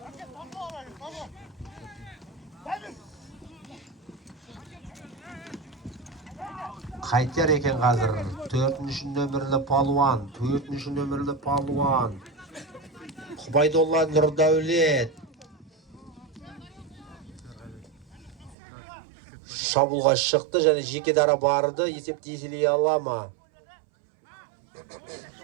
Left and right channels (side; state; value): left; drops out; at 18.6 s